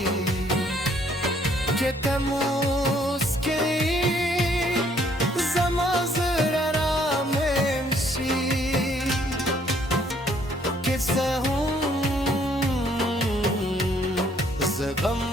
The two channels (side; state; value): both; normal; correlation 0.65